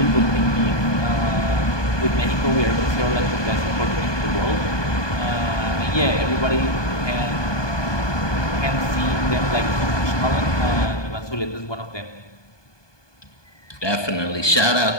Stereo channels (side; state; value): right; late; 1.2 ms